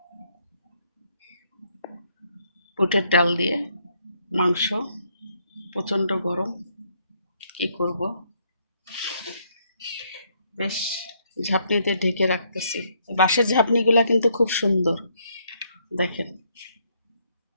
বুটের ডাল দিয়ে মাংস, প্রচণ্ড গরম, কি করব, বেশ ঝাঁপনিতে ঢেকে রাখতেছি। বাঁশের ঝাঁপনিগুলা কিন্তু খুব সুন্দর, দেখেন।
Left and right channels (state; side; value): inverted; both; correlation -0.72